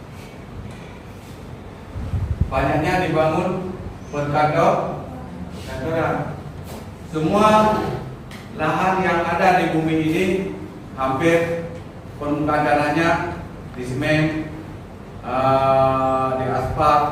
banyaknya dibangun perkantoran. Semua lahan yang ada di bumi ini hampir permukaan tanahnya di semen, di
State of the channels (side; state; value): both; identical; correlation 1.00